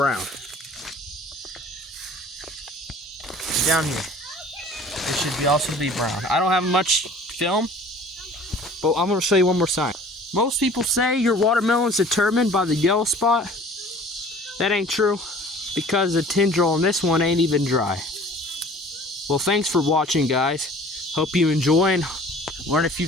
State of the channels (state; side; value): normal; both; correlation 0.48